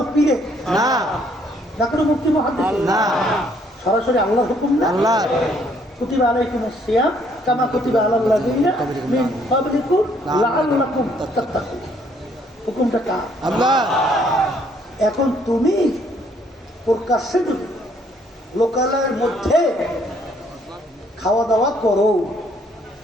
পীরে, না কোনো মুফতি মুহাদ্দিস, না, সরাসরি আল্লাহর হুকুম না। আল্লাহ কুতিবা আলাইকুমুস সিয়াম কামা কুতিবা আলাল লাযিনা মিন ক্বাবলিকুম লাআল্লাকুম তাত্তাকুন, হুকুমটা কার? আল্লাহ। এখন তুমি প্রকাশ্যে যদি লোকালয়ের মধ্যে খাওয়া দাওয়া করো,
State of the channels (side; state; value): both; normal; correlation 0.66